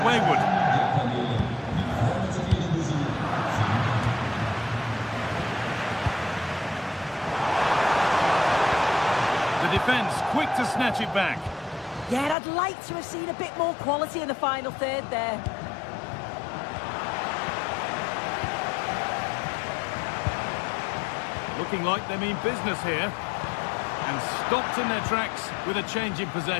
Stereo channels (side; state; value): right; drops out; at 12.4 s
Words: wayward. The defence quick to snatch it back. Yeah, I'd like to have seen a bit more quality in the final third there. looking like they mean business here. And stopped in their tracks with a change in